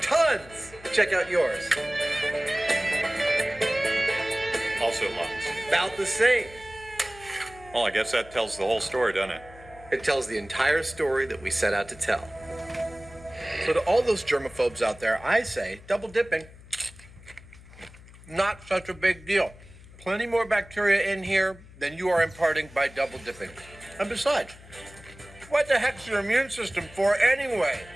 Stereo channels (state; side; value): noise; left; hum, 20 dB below the sound